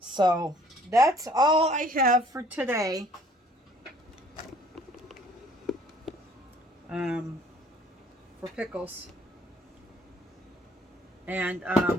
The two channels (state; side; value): normal; both; correlation 0.57